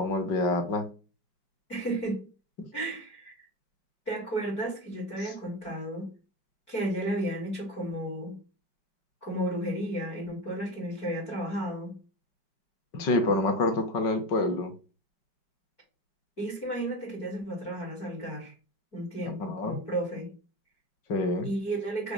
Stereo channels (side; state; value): right; late; 5.4 ms